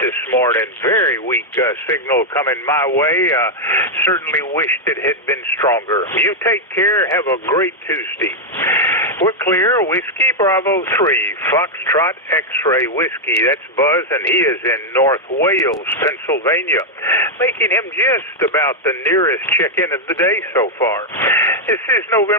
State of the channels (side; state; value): both; normal; correlation 0.00